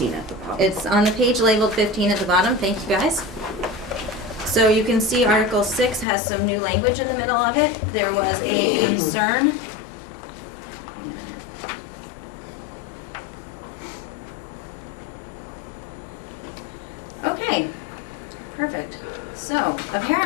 at the bottom. it's on the page labeled 15 at the bottom. Thank you, guys. So you can see Article 6 has some new language in the middle of it. There was a concern. Wait a minute. Okay, perfect. So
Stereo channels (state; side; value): drops out; right; at 6.1 s